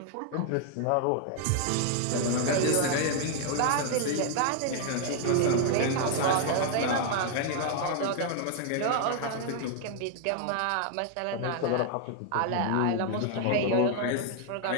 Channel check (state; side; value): different; both; correlation 0.00